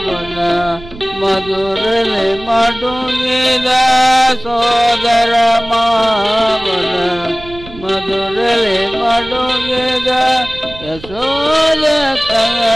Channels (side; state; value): right; noise; rumble, 17 dB below the sound